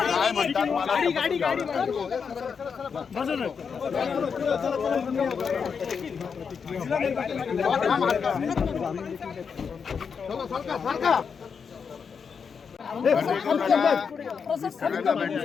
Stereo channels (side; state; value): right; quieter; 6.1 dB